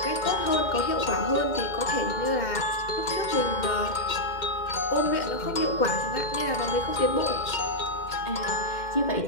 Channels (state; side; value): late; right; 2.1 ms